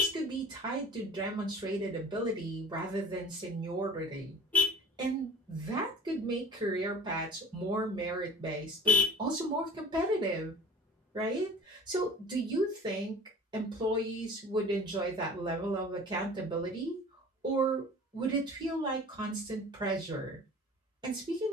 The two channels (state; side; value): normal; both; correlation 0.43